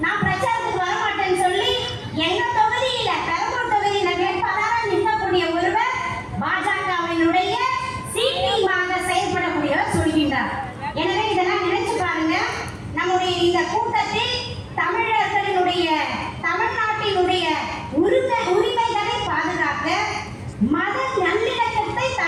நான் பிரச்சாரத்துக்கு வரமாட்டேன்னு சொல்லி எங்க தொகுதியில பெரம்பூர் தொகுதியில வேட்பாளராக நிற்கக்கூடிய ஒருவர் பாஜகவினுடைய சீட்டிங்காக செயல்படக்கூடியவர் சொல்கின்றார். எனவே இதெல்லாம் நினைச்சு பாருங்க. நம்முடைய இந்த கூட்டத்தில் தமிழர்களினுடைய தமிழ்நாட்டினுடைய உரிமைகளை பாதுகாக்க, மத நல்லிணக்கத்தை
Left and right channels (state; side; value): identical; both; correlation 1.00